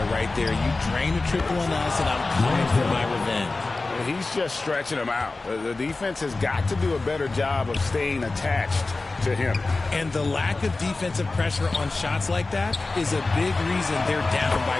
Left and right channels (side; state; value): right; quieter; 3.5 dB